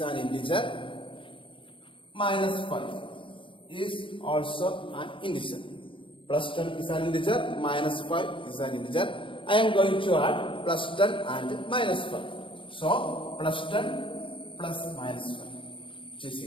an integer, minus 5 is also an integer. Plus 10 is an integer, minus 5 is an integer. I am going to add plus 10 and minus 5. So, plus 10 plus minus 5, which is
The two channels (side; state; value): right; late; 0.25 ms